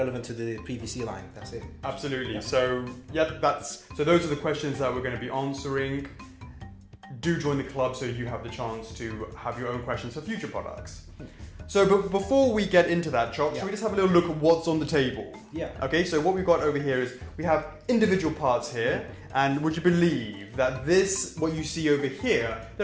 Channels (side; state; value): both; identical; correlation 1.00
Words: to the PVC line, that's it. Absolutely. Yeah. So those are the questions that we're going to be answering. Do join the club so you have the chance to have your own questions for future products. So, but before we get into that, Chop, should we just have a little look at what's on the table? Yeah. Okay, so what we've got over here is we have individual parts here, and would you believe that what you see over here,